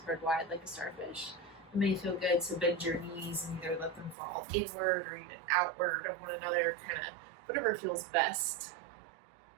wide like a starfish. It may feel good to bend your knees and either let them fall inward or even outward of one another, kind of whatever feels best.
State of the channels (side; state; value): left; drops out; at 4.2 s